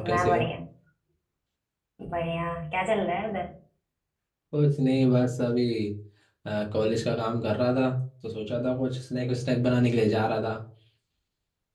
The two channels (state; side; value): identical; both; correlation 1.00